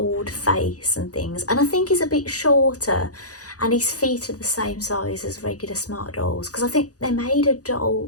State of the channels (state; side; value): late; right; 0.67 ms